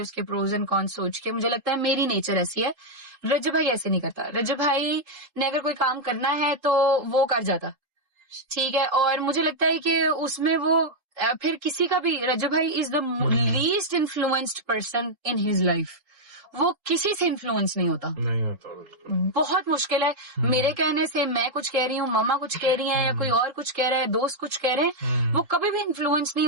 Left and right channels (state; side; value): late; left; 3.8 ms